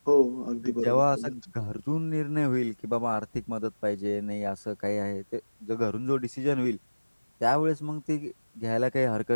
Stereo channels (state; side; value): inverted; both; correlation -1.00